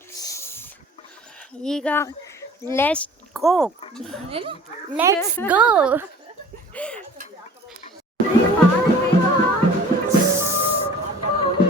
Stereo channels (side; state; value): both; normal; correlation 0.46